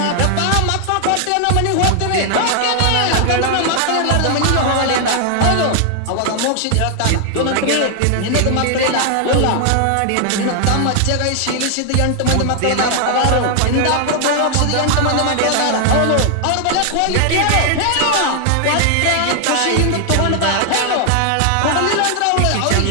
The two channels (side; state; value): both; different; correlation 0.00